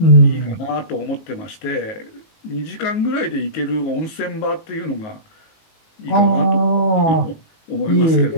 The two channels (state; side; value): late; right; 19 ms